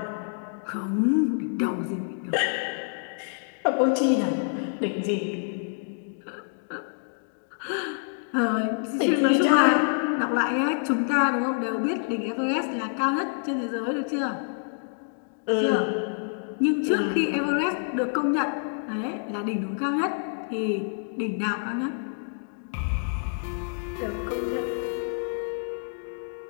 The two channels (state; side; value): silent; right; digital silence